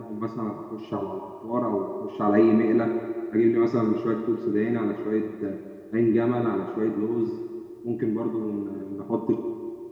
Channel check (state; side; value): identical; both; correlation 1.00